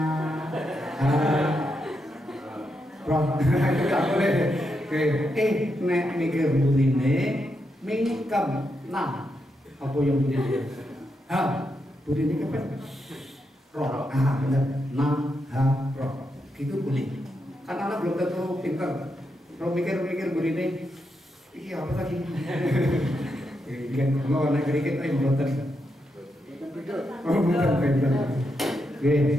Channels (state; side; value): normal; both; correlation 0.83